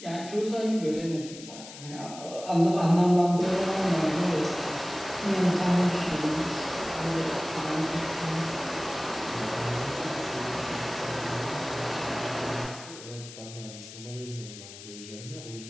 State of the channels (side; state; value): left; noise; hiss, 14 dB below the sound